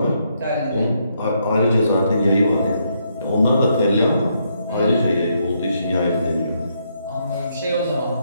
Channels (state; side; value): inverted; both; correlation -0.76